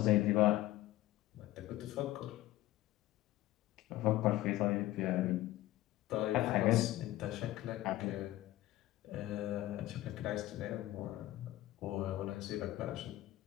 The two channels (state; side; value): quieter; right; 15.9 dB